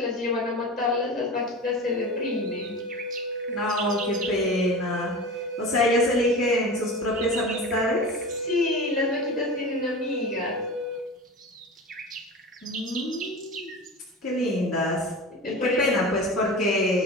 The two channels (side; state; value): both; normal; correlation 0.31